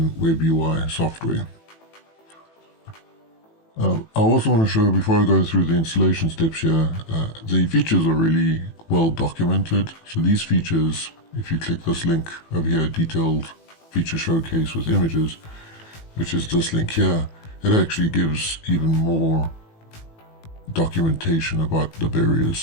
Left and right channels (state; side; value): late; right; 18 ms